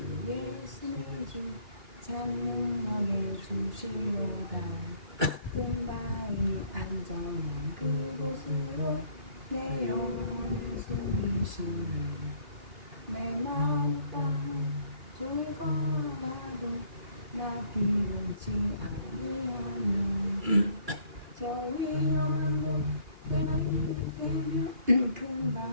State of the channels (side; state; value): left; late; 2.3 ms